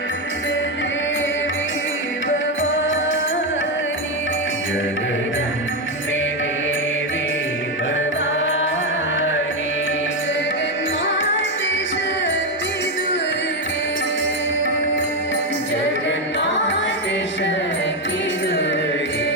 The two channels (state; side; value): normal; both; correlation 0.08